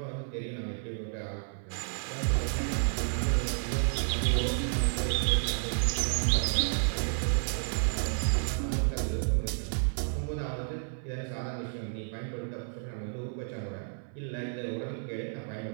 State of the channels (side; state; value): left; silent; 57 dB below the other